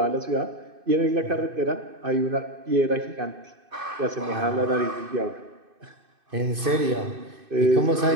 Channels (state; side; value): late; left; 2.6 ms